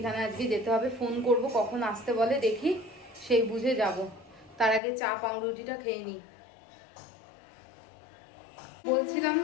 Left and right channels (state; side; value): drops out; right; at 4.8 s